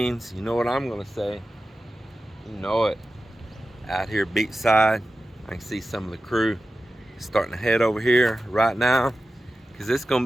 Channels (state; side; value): normal; both; correlation 0.93